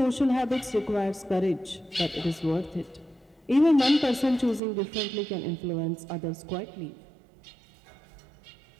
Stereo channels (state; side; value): drops out; left; at 4.6 s